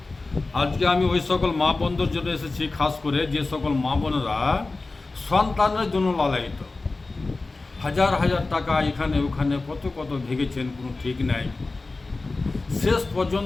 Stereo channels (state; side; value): quieter; right; 3.5 dB